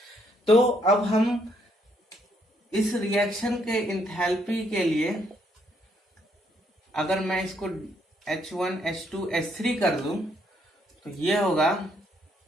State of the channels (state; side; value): normal; both; correlation 0.71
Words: तो अब हम इस रिएक्शन के इंथैल्पी के लिए अगर मैं इसको H1 H2 H3 कर दूं तो ये होगा